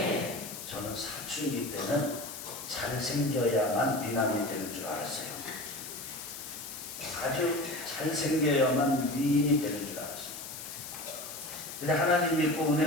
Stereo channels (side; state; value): left; noise; hiss, 10 dB below the sound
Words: 저는 사춘기 때는 잘생겨야만 미남이 되는 줄 알았어요. 아주 잘생겨야만 미인이 되는 줄 알았어요. 근데 하나님 믿고